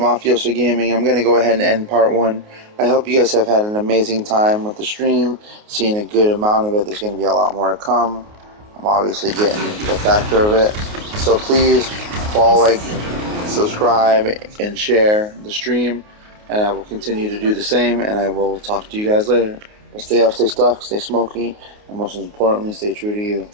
Gaming. I'm going to go ahead and end part 1. I hope you guys have had an amazing time with the stream, seeing a good amount of it. There's going to be a lot more to come. I'm obviously getting the factor of it. So please follow, like, subscribe, and share the stream. And I will continue to do the same, and I will talk to you guys later. Well, stay up, stay stuck, stay smoky, and most importantly, stay true to you.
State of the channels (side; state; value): left; late; 28 ms